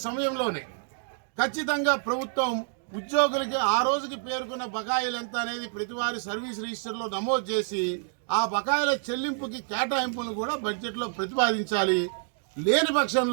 సమయంలోనే ఖచ్చితంగా ప్రభుత్వం ఉద్యోగులకి ఆ రోజుకి పేర్కొన్న బకాయిలు ఎంత అనేది ప్రతివారి సర్వీస్ రిజిస్టర్లో నమోదు చేసి ఆ బకాయిల చెల్లింపుకి కేటాయింపులను కూడా బడ్జెట్లో ప్రతిపాదించాలి. లేని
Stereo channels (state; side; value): silent; left; 59 dB below the other